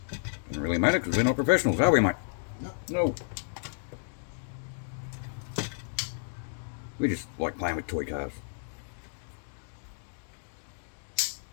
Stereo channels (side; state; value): right; silent; digital silence